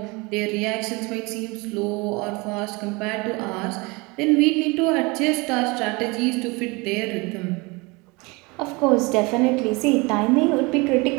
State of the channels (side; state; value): left; quieter; 26.2 dB